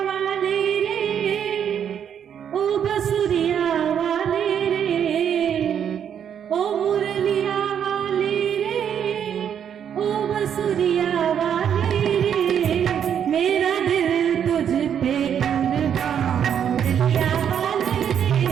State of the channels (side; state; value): left; quieter; 8.6 dB